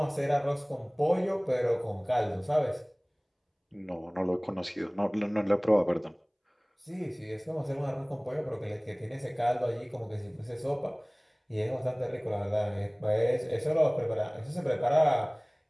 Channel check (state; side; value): identical; both; correlation 1.00